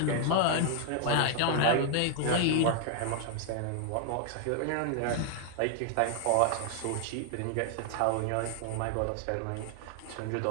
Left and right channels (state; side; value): different; both; correlation 0.00